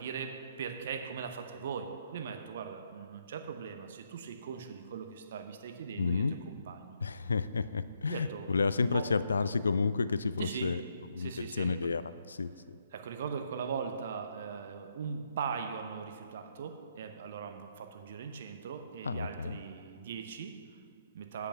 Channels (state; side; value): inverted; both; correlation -0.76